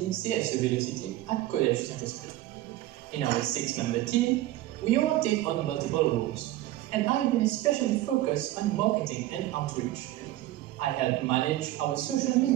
CSC Velocity at Collège Saint-Esprit. In our 6-member team, we all take on multiple roles, and I will especially focus on marketing and outreach. I help manage our social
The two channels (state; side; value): quieter; left; 15.5 dB